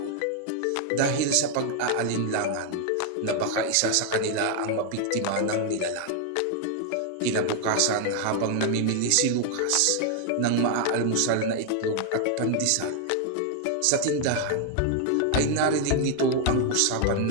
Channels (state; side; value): different; both; correlation 0.00